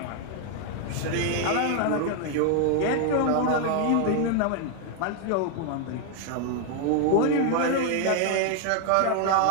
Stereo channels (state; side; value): different; both; correlation 0.01